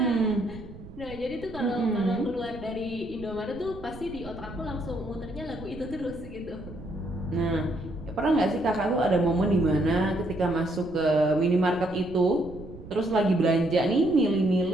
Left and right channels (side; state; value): right; noise; rumble, 15 dB below the sound